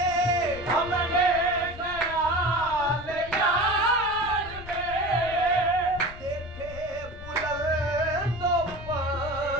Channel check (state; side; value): noise; left; rumble, 14 dB below the sound